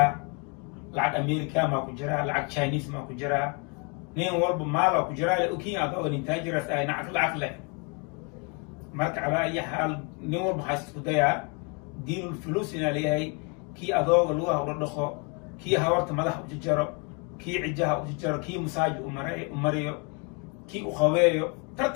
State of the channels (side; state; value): right; quieter; 34.3 dB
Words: لعد أمريكا ما كجرا لعد تشاينيز ما كجرا نين والبو مالا كجرا لأوكي أدو نتاجر ساي نعقل عقله مركا على أي حال نين والبو حاسس بدايا دين الفلوس إن عليها كي أدو لوها وردخو كي هورت مدح وججرو كي عجها وججرو كي مساج أمريو كي أخويو